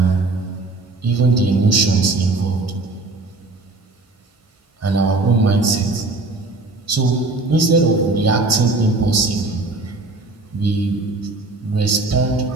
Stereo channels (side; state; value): left; quieter; 3.2 dB